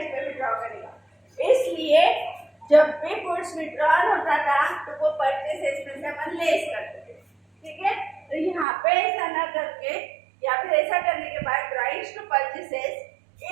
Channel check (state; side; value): drops out; left; at 8.7 s